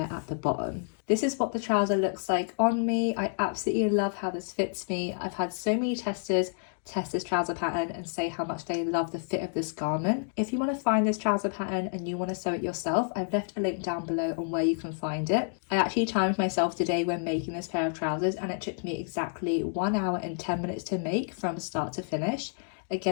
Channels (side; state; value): right; silent; 58 dB below the other